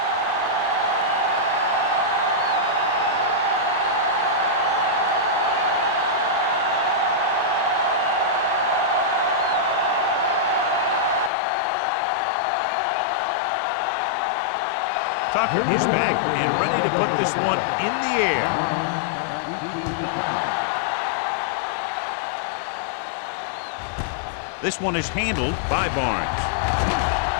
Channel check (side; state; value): right; drops out; at 11.3 s